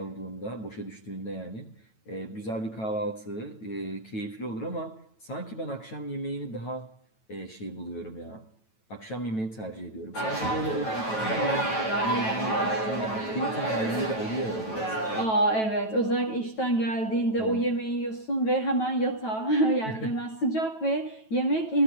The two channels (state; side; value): late; right; 9.1 ms